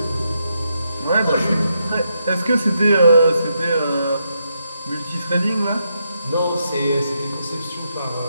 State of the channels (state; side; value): inverted; both; correlation -0.81